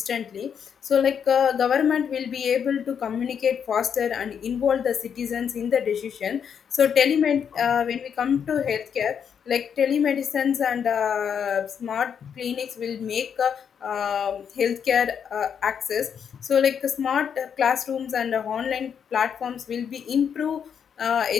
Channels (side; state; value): right; quieter; 7.6 dB